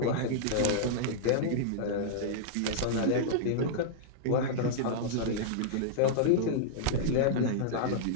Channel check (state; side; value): different; both; correlation -0.02